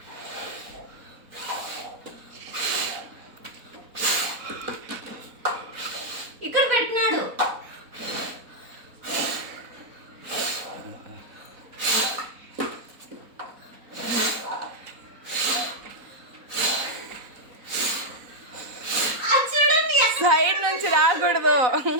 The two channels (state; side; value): late; left; 4.0 ms